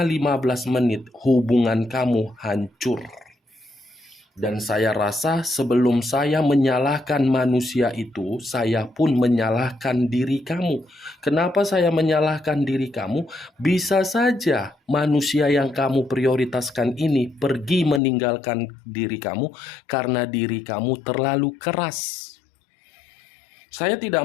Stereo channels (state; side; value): drops out; right; at 18.0 s